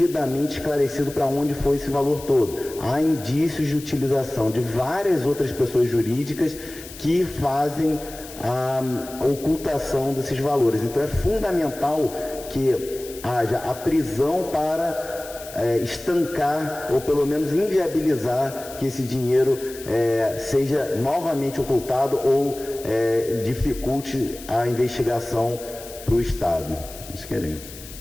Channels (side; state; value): left; noise; hiss, 15 dB below the sound